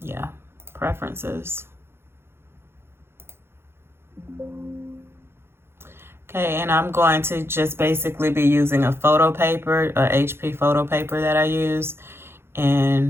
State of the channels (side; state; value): left; late; 0.12 ms